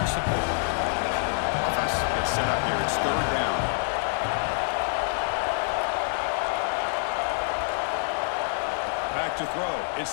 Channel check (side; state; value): right; silent; digital silence